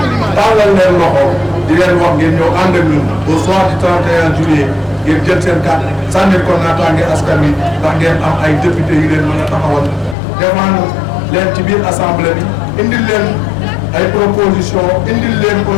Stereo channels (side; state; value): right; drops out; at 10.2 s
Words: tàllal leen loxo di leen wax ngeen ñëw ànd ak ñun au soir du 31 juillet ngeen jël seen carte sànnil ko naataange askan wi ndax ngeen am ay député yu leen mën a taxawal défendre leen ci biir assemblée bi indil leen ay proposition indil leen